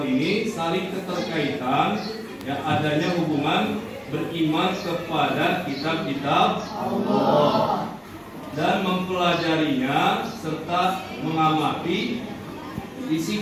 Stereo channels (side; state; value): both; identical; correlation 1.00